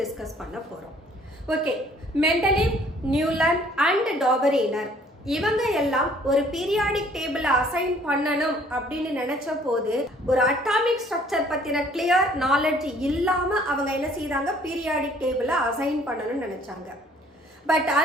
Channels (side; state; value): both; normal; correlation 0.58